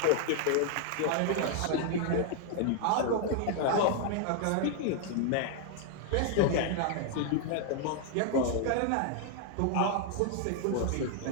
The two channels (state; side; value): different; both; correlation 0.00